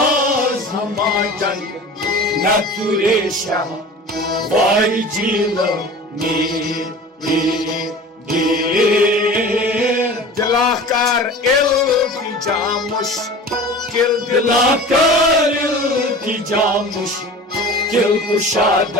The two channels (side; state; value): both; normal; correlation 0.38